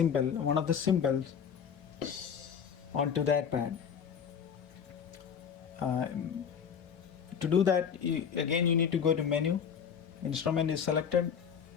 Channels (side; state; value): right; quieter; 7.4 dB